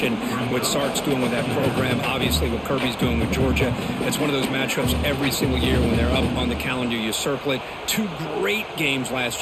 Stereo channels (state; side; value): identical; both; correlation 1.00